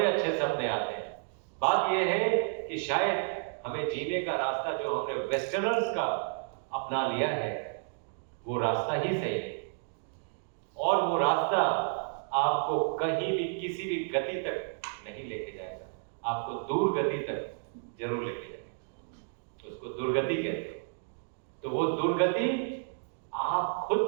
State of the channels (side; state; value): left; silent; digital silence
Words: अच्छे सपने आते हैं। बात यह है कि शायद हमें जीने का रास्ता जो हमने वेस्टर्नर्स का अपना लिया है, वो रास्ता ही सही है। और वो रास्ता आपको कहीं भी किसी भी गति तक नहीं लेके जाएगा, आपको दूर गति तक जरूर लेके जाएगा। उसको दुर्गति कहते हैं। तो वो दुर्गति आप खुद